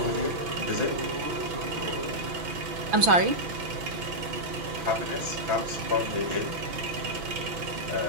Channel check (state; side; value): late; left; 6.0 ms